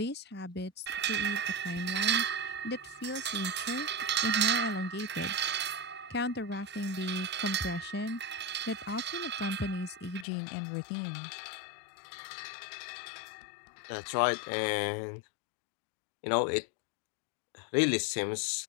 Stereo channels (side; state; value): right; drops out; at 10.2 s